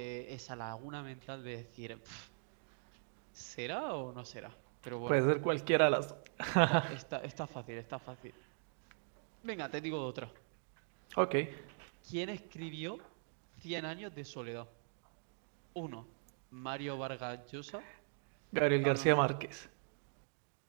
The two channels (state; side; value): silent; left; digital silence